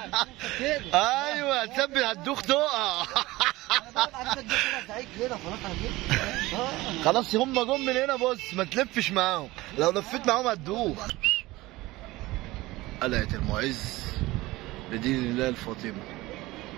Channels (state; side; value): quieter; left; 19.3 dB